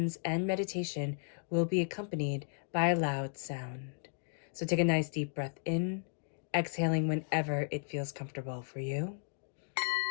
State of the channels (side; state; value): right; silent; digital silence